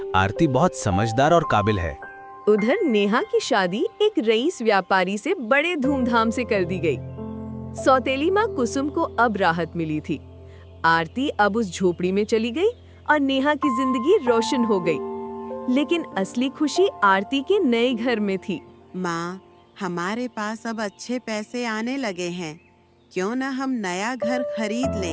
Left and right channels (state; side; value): identical; both; correlation 1.00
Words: आरती बहुत समझदार और काबिल है। उधर नेहा की शादी एक रईस व्यापारी से बड़े धूमधाम से कर दी गई। सौतेली माँ कुसुम को अब राहत मिली थी। आरती अब उस झोपड़ी में चली गई और नेहा की जिंदगी रोशन हो गई। लेकिन असली खुशी आरती के नए घर में थी। माँ, हमारे पास अब अच्छे पैसे आने लगे हैं, क्यों न हम नया घर खरीद